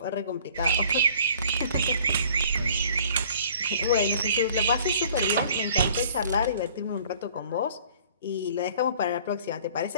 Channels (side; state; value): both; inverted; correlation -0.53